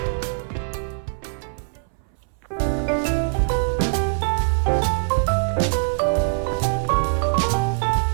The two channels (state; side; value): silent; left; 64 dB below the other